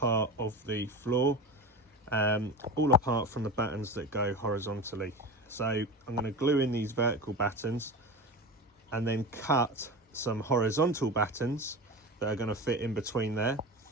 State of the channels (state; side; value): normal; both; correlation 0.28